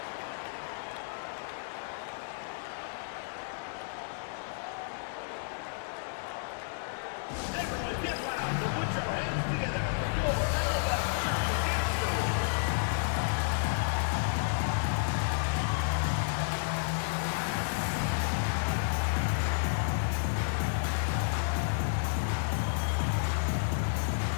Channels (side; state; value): right; silent; 57 dB below the other